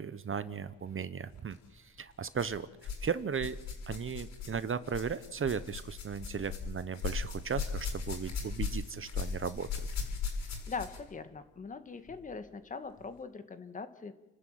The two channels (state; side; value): normal; both; correlation 0.26